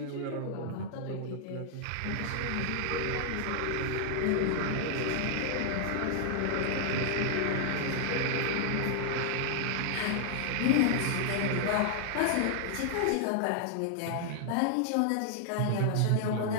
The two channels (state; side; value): different; both; correlation -0.01